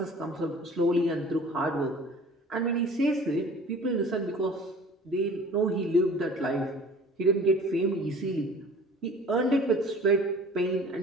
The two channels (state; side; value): normal; both; correlation 0.46